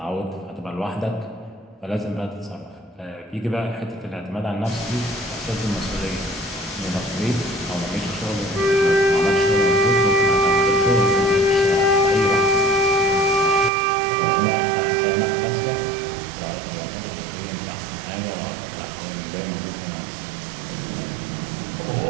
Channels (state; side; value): drops out; left; at 13.7 s